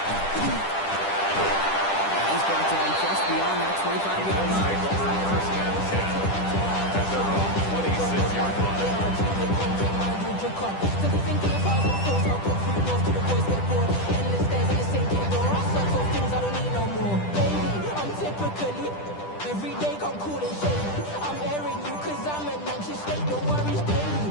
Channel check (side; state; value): right; late; 10 ms